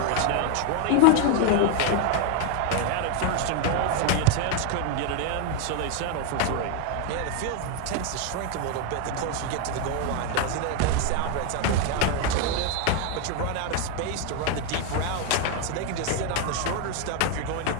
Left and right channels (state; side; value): different; both; correlation 0.01